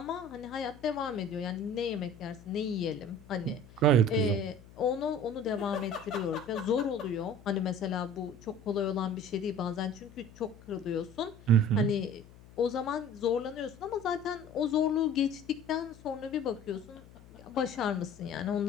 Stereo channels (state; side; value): noise; left; hum, 21 dB below the sound